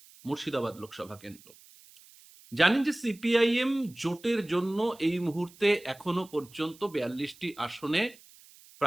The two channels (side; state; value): right; noise; hiss, 24 dB below the sound